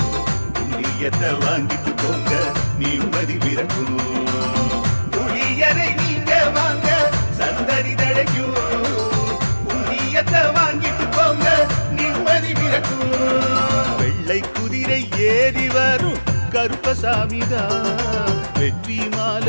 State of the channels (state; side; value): inverted; both; correlation -1.00